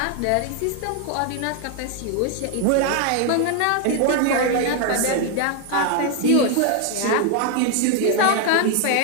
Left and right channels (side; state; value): both; different; correlation 0.01